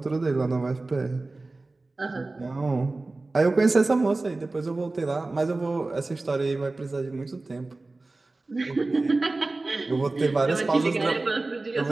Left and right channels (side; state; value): left; quieter; 3.2 dB